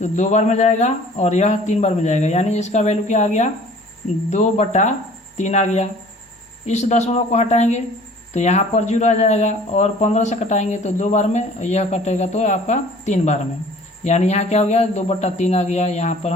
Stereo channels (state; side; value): normal; both; correlation 0.49